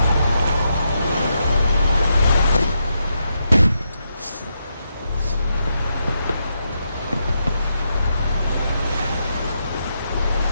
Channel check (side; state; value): both; inverted; correlation -0.82